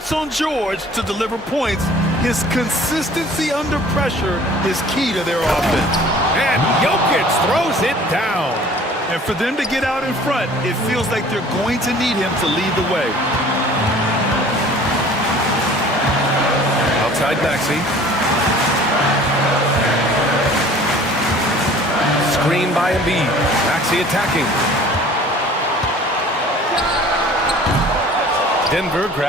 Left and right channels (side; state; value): both; normal; correlation 0.49